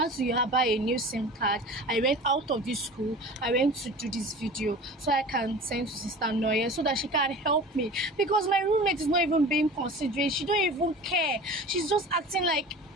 had to buy a new SIM card. I went out of this school. I went to do this video so I can send to Sister Noye so that she can help me. Because my roommate is not even being considerate. She don't even care. She's just acting like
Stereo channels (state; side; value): normal; both; correlation 0.38